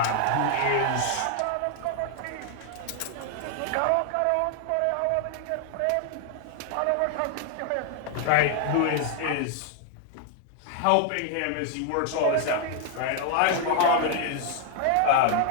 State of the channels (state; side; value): different; both; correlation 0.00